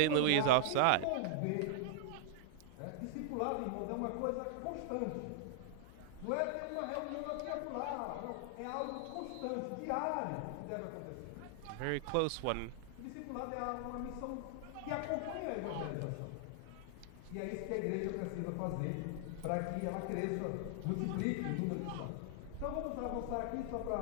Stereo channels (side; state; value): both; different; correlation -0.01